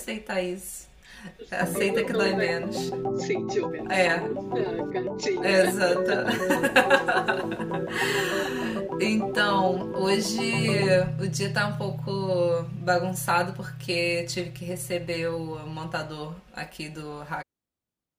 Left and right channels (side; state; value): both; identical; correlation 1.00